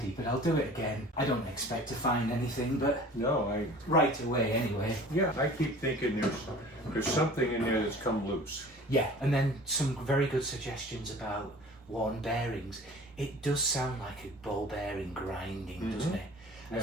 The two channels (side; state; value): both; normal; correlation 0.44